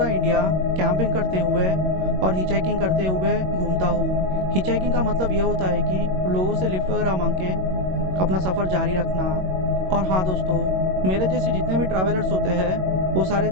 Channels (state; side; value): late; left; 22 ms